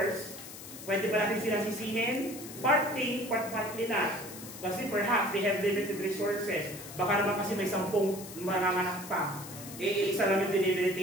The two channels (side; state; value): left; noise; hiss, 13 dB below the sound